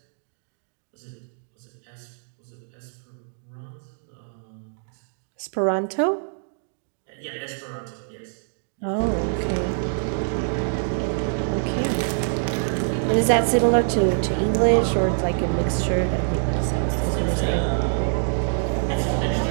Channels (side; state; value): left; silent; digital silence